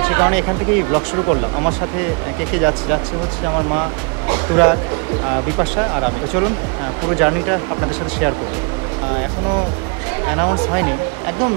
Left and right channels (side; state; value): left; quieter; 34.0 dB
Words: সে কারণে এখান থেকেই ব্লগ শুরু করলাম। আমার সাথে কে যাচ্ছে হচ্ছে আমার মা, তুরাগ, বিপাশা আর আমি। তো চলুন পুরো জার্নিটা আপনাদের সাথে শেয়ার করব। এখনও অ্যানাউন্স হয়নি, একদম